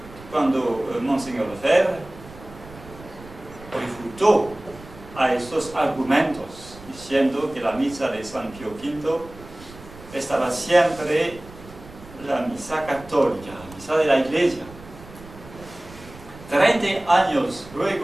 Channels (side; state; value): right; noise; rumble, 18 dB below the sound